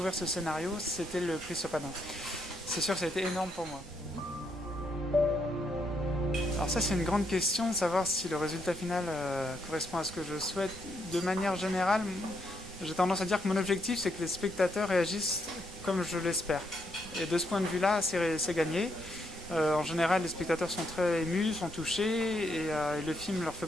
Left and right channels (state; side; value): noise; right; rumble, 18 dB below the sound